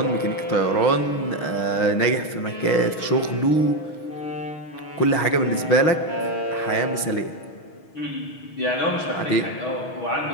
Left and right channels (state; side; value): late; right; 6.3 ms